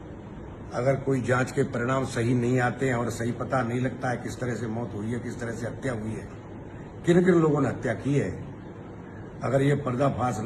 अगर कोई जांच के परिणाम सही नहीं आते हैं और सही पता नहीं लगता है किस तरह से मौत हुई है, किस तरह से हत्या हुई है, किन किन लोगों ने हत्या की है, अगर ये पर्दाफाश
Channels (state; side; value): identical; both; correlation 1.00